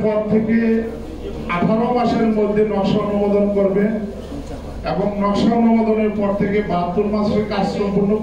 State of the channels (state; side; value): identical; both; correlation 1.00